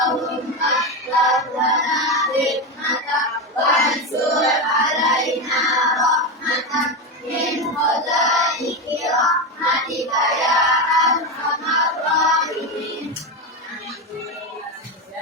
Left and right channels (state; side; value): normal; both; correlation 0.14